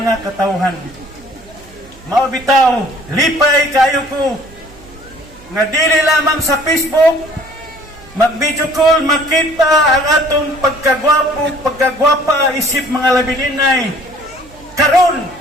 katawhan. Maubitaw, lipay kayo ko nga dili lamang sa Facebook mag-video call, makita ang atong pagkagwapa isip mga labininay. Karon,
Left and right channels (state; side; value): noise; right; hum, 24 dB below the sound